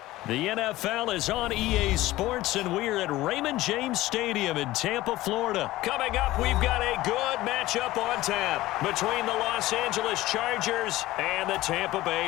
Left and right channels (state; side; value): quieter; right; 17.1 dB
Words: The NFL is on EA Sports, and we're at Raymond James Stadium in Tampa, Florida. Coming up, we've got a good matchup on tap between the Los Angeles Chargers and the Tampa Bay